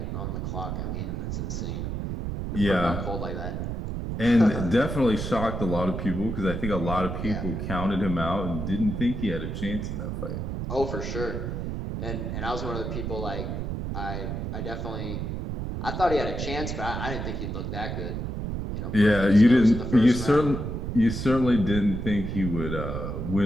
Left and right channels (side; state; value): right; noise; rumble, 4 dB below the sound